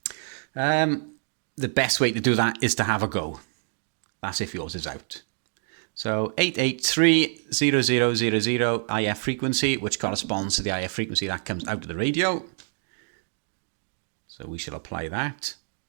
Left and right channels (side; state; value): left; silent; digital silence